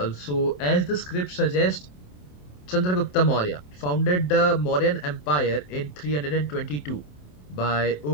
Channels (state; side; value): late; right; 27 ms